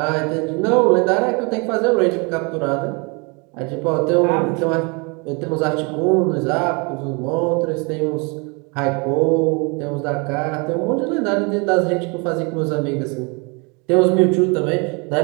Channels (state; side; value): quieter; left; 31.3 dB